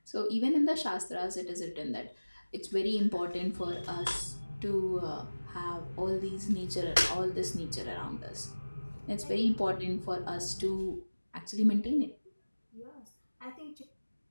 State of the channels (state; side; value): inverted; both; correlation -1.00